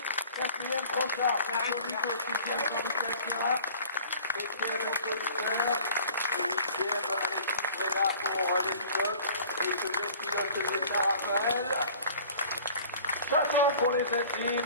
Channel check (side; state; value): both; inverted; correlation -0.48